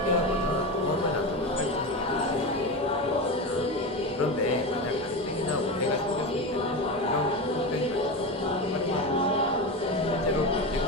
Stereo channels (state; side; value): normal; both; correlation 0.21